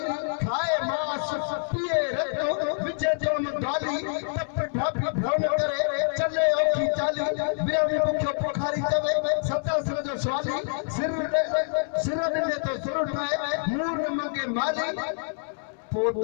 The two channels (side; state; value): right; silent; 60 dB below the other